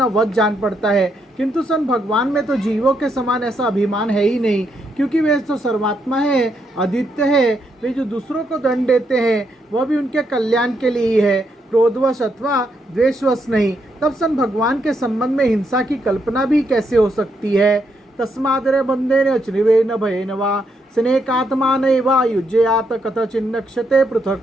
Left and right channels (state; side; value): normal; both; correlation 0.78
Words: वध जान पड़ता है, किंतु सन भगवान में तो जीवों के समान ऐसा अभिमान है ही नहीं, क्योंकि वे तो सर्वात्मा है, अद्वितीय है। वे जो दूसरों को दंड देते हैं वह भी उनके कल्याण के लिए ही है, क्रोधवश अथवा द्वेषवश नहीं। तब सन भगवान के संबंध में हिंसा की कल्पना भी कैसे हो सकती है। तस्मादरे बंधेन चनिवेन भयेन वा स्नेकात्मानैवा युज्ययात कथचिन्नक्षते